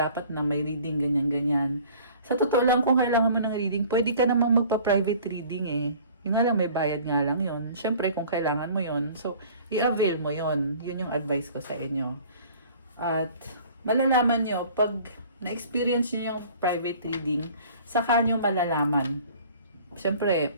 na may reading, ganyan-ganyan. Sa totoo lang, kung kailangan mo ng reading, pwede ka namang magpa-private reading eh. Yung nga lang, may bayad nga lang yun. Siyempre, kung kailangan mo yun, so, i-avail mo yun. Yun yung advice ko sa inyo. At, malalaman nyo, pag na-experience nyo yung private reading, saka nyo malalaman. Siyempre,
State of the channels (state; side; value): inverted; both; correlation -0.50